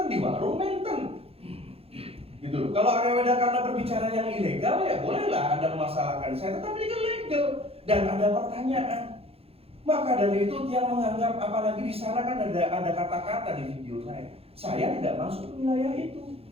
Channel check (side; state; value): left; late; 0.28 ms